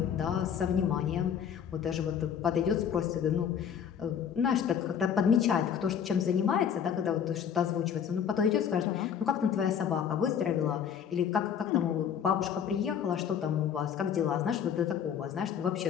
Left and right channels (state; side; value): quieter; right; 8.1 dB